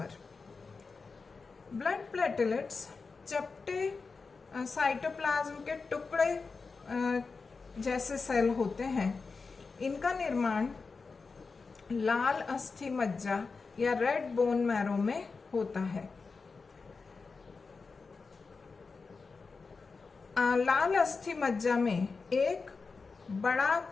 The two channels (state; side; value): quieter; right; 4.5 dB